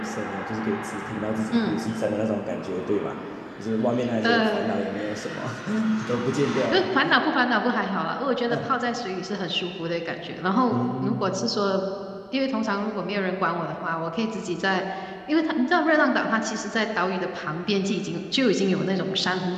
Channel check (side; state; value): both; identical; correlation 1.00